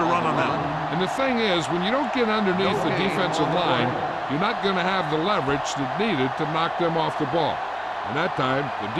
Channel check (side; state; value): both; identical; correlation 1.00